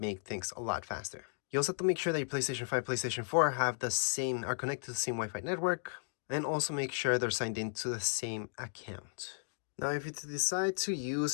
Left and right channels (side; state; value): right; silent; digital silence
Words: things a lot faster. You also have to make sure that your PlayStation 5, PlayStation 4 are connected to the same Wi-Fi network, and also make sure they're signed into the same account. Now, if you decide to